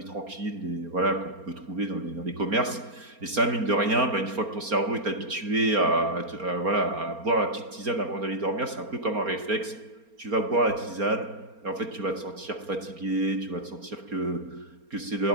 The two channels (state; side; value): late; left; 4.3 ms